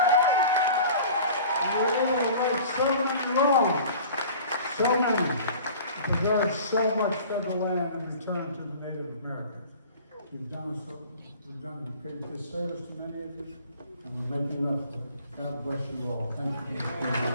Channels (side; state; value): both; inverted; correlation -0.44